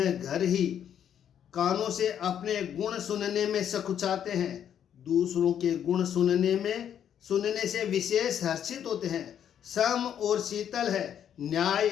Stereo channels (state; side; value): quieter; right; 9.3 dB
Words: घर ही, कानों से अपने गुण सुनने में सकुचाते हैं, दूसरों के गुण सुनने से विशेष हर्षित होते हैं, सम और शीतल है, न्याय